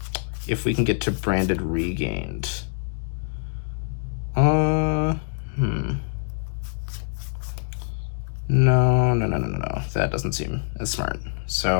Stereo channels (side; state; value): right; silent; digital silence